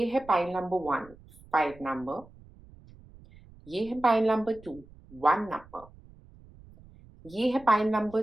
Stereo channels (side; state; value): right; noise; rumble, 23 dB below the sound